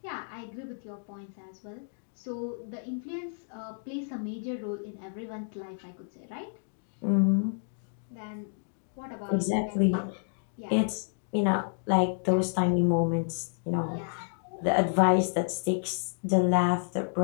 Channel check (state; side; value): silent; right; digital silence